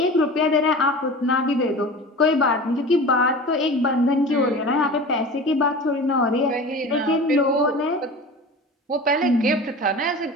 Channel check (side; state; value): both; normal; correlation 0.35